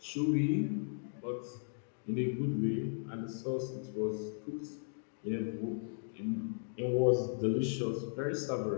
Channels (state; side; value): silent; right; digital silence